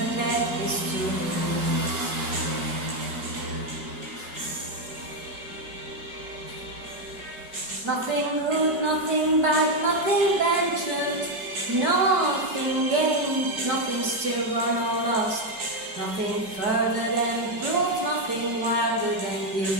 that is to lose. Nothing good, nothing bad, nothing ventured, nothing gained, nothing still gone or lost, nothing further than proof, nothing wilder than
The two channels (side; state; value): left; late; 4.7 ms